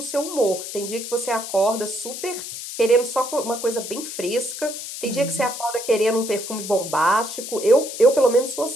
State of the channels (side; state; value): left; noise; hiss, 8 dB below the sound